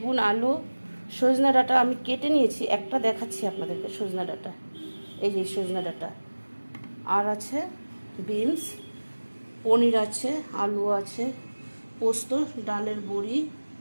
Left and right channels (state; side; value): inverted; both; correlation -1.00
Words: আলু, সজনা ডাঁটা আমি কেটে নিয়েছি, একটা দেখাচ্ছি আপনাদেরকে। সজনা ডাঁটা, এই যে সজনা ডাঁটা, আর আছে বিনস, পনির আছে, আলু আছে, পোস্ত, ডালের বড়ি,